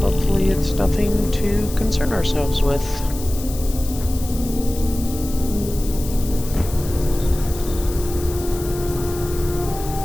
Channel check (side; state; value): left; noise; hiss, 13 dB below the sound